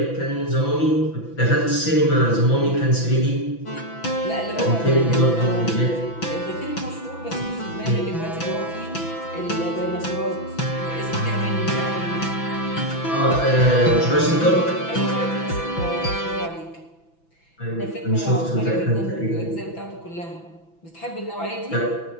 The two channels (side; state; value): right; late; 6.0 ms